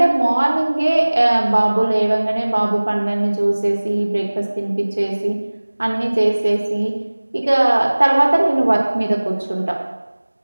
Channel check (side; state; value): both; inverted; correlation -1.00